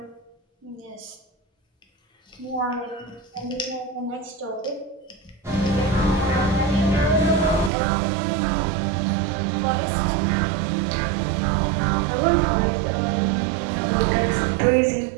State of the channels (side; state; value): left; drops out; at 7.7 s